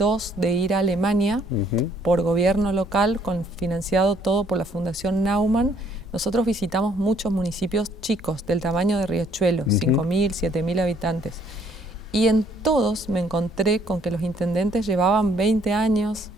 de ir a Alemania por gobierno local, financiado todo por la Fundación Naumann, nosotros visitamos muchos municipios chicos del tamaño de Riachuelo, 5.000, 7.000 habitantes. Y en todos me encontré con que los intendentes llevaban 20 años,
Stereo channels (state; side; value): normal; both; correlation 0.63